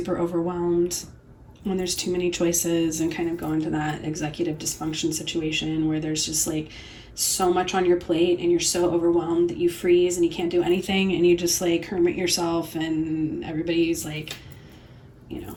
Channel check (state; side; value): identical; both; correlation 1.00